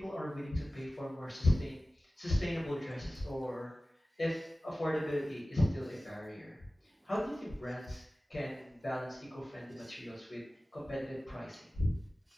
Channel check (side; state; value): both; normal; correlation 0.97